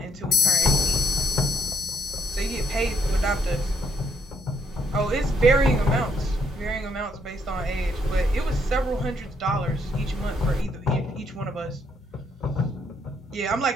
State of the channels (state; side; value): normal; both; correlation 0.73